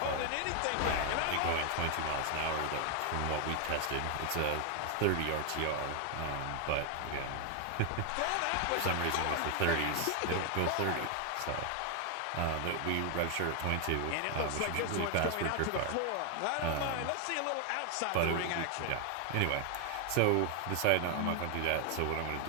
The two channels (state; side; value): different; both; correlation 0.00